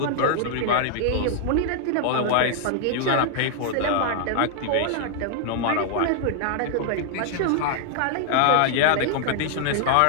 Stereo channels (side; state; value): both; different; correlation 0.00